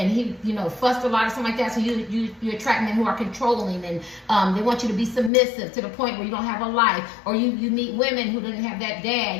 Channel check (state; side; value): drops out; right; at 5.3 s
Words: he, you know, fussed a lot or something like that. So you attract men who are controlling, and they want you to be submissive to the point where you don't have a life. Or you meet women who didn't have that